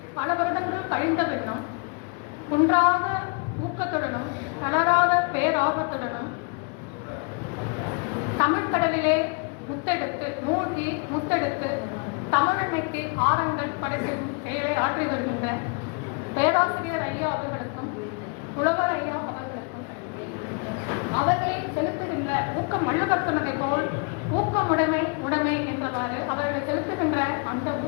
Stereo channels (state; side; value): quieter; right; 34.9 dB